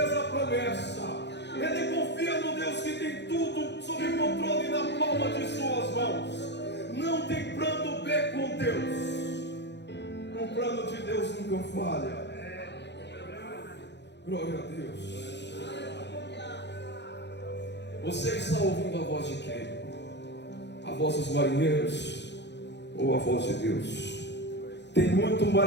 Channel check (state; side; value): late; right; 0.50 ms